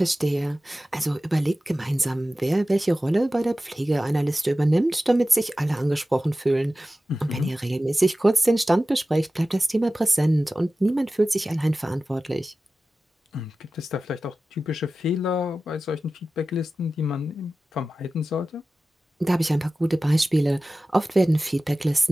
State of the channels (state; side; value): normal; both; correlation 0.95